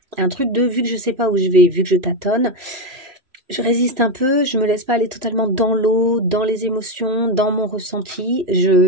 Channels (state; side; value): late; left; 3.1 ms